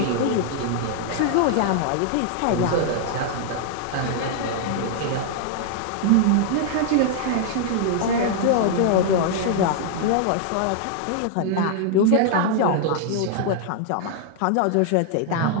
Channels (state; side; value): different; both; correlation 0.00